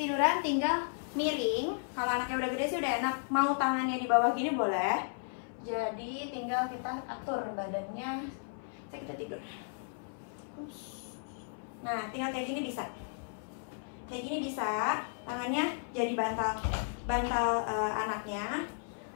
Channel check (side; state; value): right; silent; 55 dB below the other